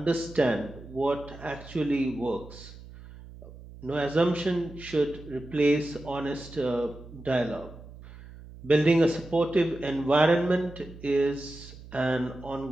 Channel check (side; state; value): right; noise; hum, 17 dB below the sound